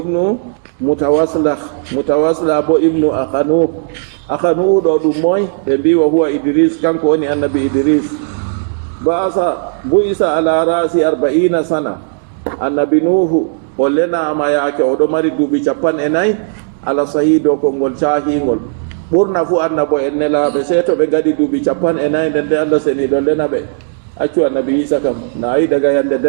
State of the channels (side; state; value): left; silent; digital silence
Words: mutawasila bo ibnu akhanu do dum moy be biwa huwa Idris kanko woni annabi Idris bu isa ala rasi 40 sana annabi nuhu o lena ma yake o do mari dubi 40 ala sahido ko ngol cahingol burna fu annabo en nelabe seto be gadi dubi 40 nde Allah seni do lena be accu annabi isa kam na ay daga yande